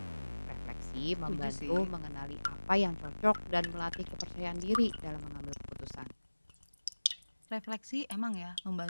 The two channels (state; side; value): inverted; both; correlation -1.00